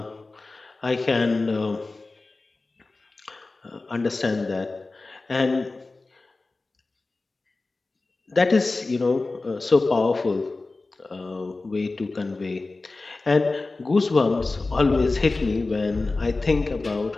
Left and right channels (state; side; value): quieter; right; 3.4 dB